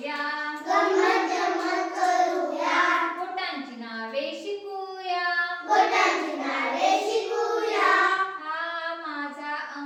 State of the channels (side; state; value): both; identical; correlation 1.00